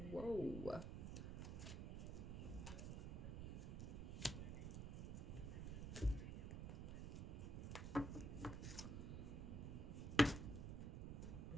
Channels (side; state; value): right; noise; rumble, 3 dB below the sound